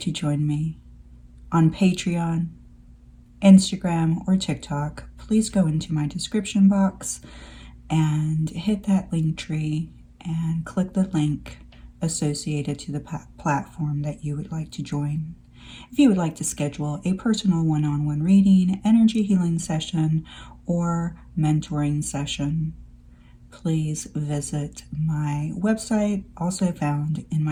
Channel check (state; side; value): identical; both; correlation 1.00